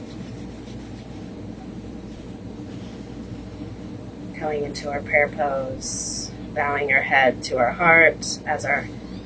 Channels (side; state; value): both; identical; correlation 1.00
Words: Going into our prayer pose, bowing our head to our heart as our